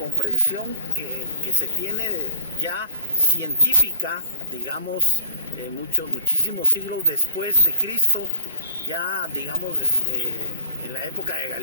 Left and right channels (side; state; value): both; inverted; correlation -0.50